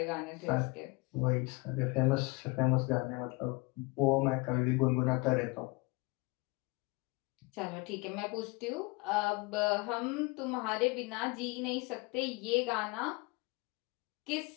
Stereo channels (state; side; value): quieter; right; 26.1 dB